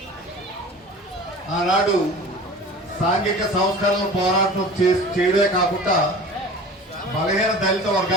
ఆనాడు సాంఘిక సంస్కరణల పోరాటం చేయడమే కాకుండా బలహీన దళిత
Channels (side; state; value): both; normal; correlation 0.39